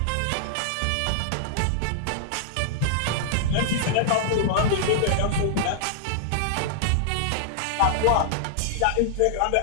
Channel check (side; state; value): both; different; correlation -0.01